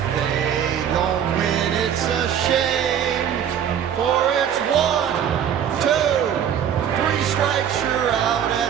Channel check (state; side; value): quieter; left; 9.0 dB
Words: they don't win, it's a shame. For it's 1, 2, 3 strikes, you're out